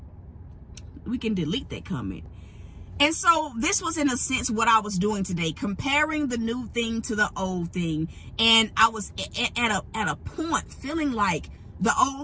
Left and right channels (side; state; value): both; identical; correlation 1.00